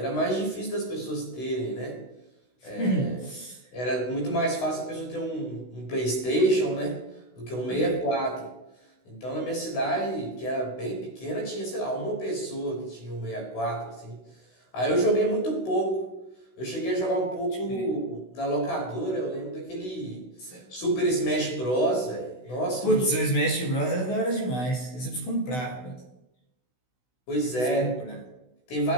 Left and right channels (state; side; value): late; right; 16 ms